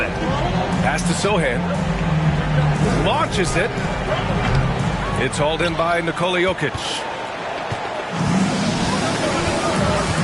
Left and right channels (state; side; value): identical; both; correlation 1.00